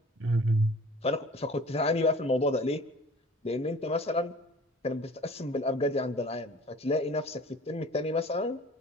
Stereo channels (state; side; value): normal; both; correlation 0.46